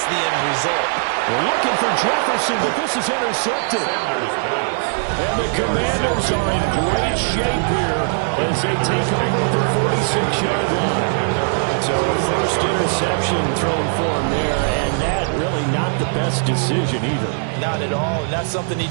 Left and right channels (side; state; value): left; silent; 66 dB below the other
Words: the end result. We're looking for Jefferson, but this is intercepted. And the Commanders are in great shape here as they take over the 46-yard line. So a first interception thrown for him there, and that really not the best decision either. Not at all, and that's something he